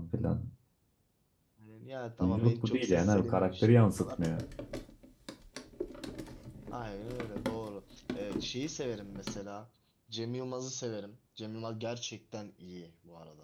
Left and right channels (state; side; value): identical; both; correlation 1.00